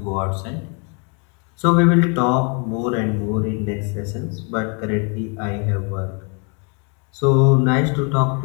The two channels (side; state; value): right; quieter; 36.8 dB